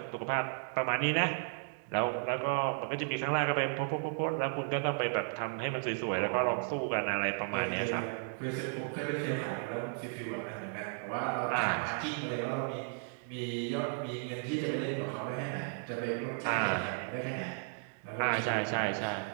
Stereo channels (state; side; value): silent; left; 55 dB below the other